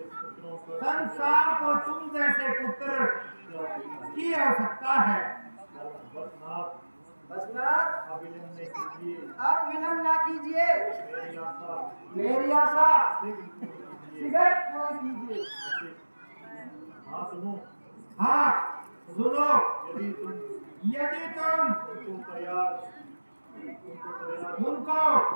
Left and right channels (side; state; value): both; inverted; correlation -1.00